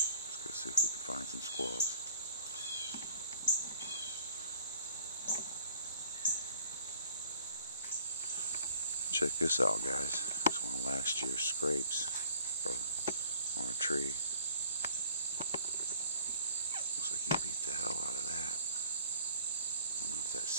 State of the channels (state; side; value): inverted; both; correlation -0.54